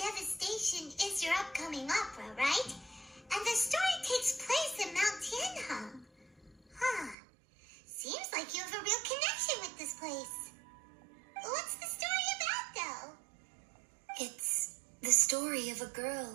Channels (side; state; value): left; drops out; at 7.2 s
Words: Devastation is your upcoming opera, right? And the story takes place in Mount Tianheng. Huh. Seems like you have a real connection with this place. What's the story about, though? It's the story of a girl